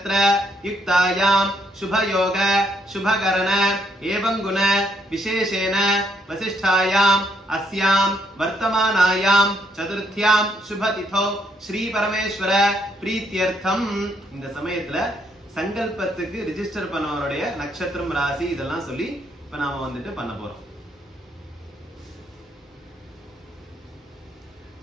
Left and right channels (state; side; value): normal; both; correlation 0.73